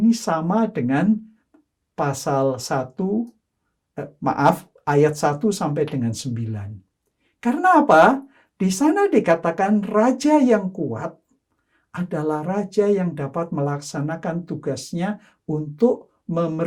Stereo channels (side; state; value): both; identical; correlation 1.00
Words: sama dengan pasal 1, ayat 1 sampai dengan 9. Karena apa? Di sana dikatakan raja yang kuat adalah raja yang dapat melaksanakan tugasnya untuk